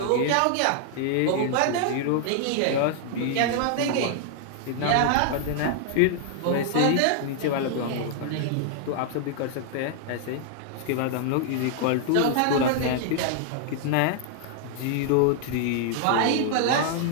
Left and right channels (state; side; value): different; both; correlation 0.00